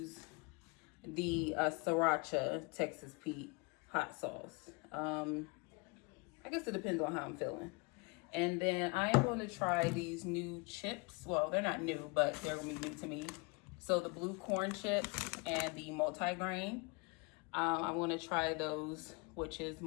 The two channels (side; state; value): right; quieter; 30.2 dB